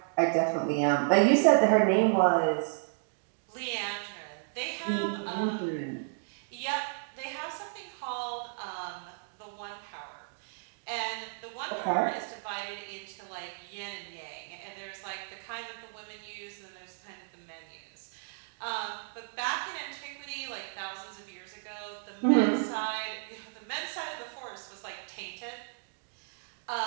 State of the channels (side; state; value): left; silent; digital silence